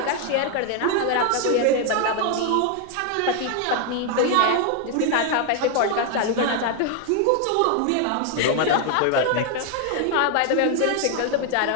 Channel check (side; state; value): both; different; correlation 0.00